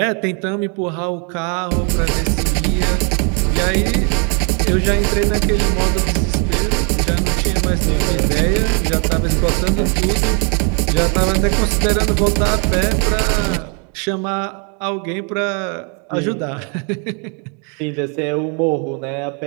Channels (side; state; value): left; quieter; 37.3 dB